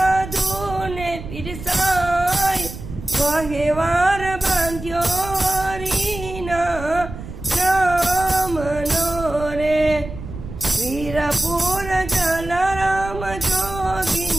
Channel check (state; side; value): noise; right; rumble, 11 dB below the sound